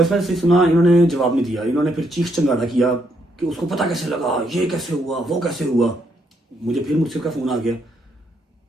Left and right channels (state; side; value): normal; both; correlation 0.75